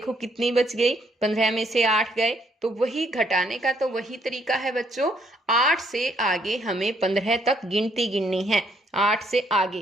कितनी बच गई, 15 में से 8 गए, तो वही घटाने का तो वही तरीका है बच्चों। 8 से आगे हमें 15 तक गिनती गिननी है। 8 से आगे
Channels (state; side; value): normal; both; correlation 0.70